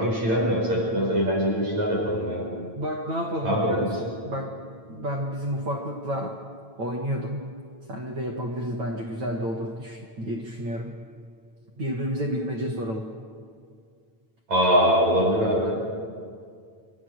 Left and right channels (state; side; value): late; left; 9.0 ms